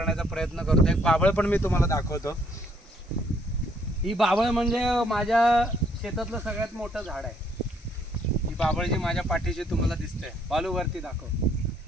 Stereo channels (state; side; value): normal; both; correlation 0.67